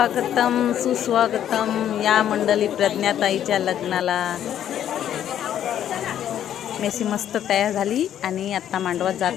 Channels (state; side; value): quieter; right; 10.5 dB